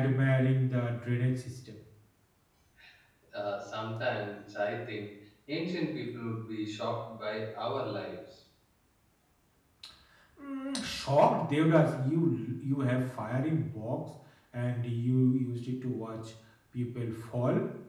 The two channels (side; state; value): both; identical; correlation 1.00